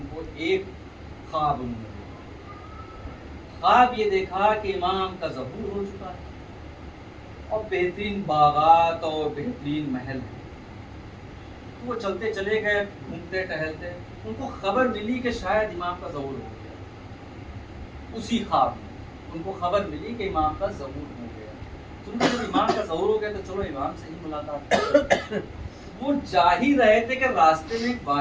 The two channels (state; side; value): identical; both; correlation 1.00